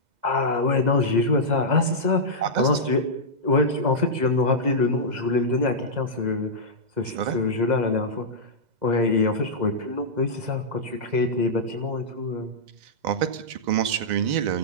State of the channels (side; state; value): left; late; 2.0 ms